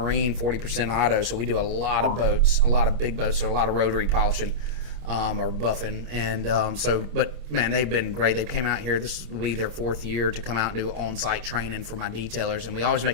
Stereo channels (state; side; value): late; left; 27 ms